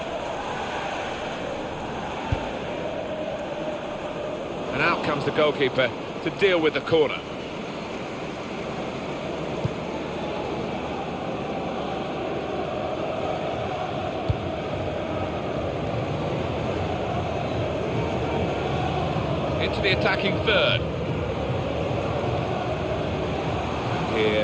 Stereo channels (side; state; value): both; identical; correlation 1.00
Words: And out comes the goalkeeper to deal with the corner. Into the attacking third. And